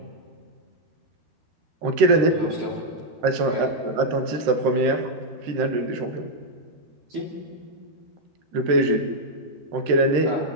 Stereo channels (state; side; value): late; left; 13 ms